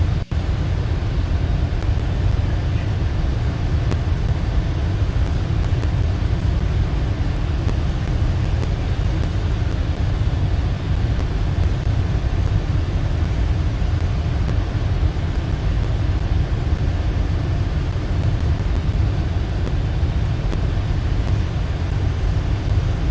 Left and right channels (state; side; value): identical; both; correlation 1.00